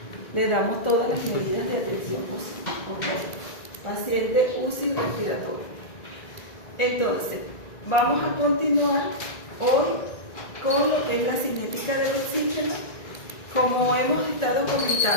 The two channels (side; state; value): right; late; 1.9 ms